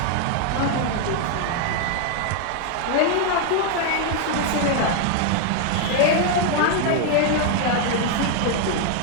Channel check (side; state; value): both; different; correlation 0.01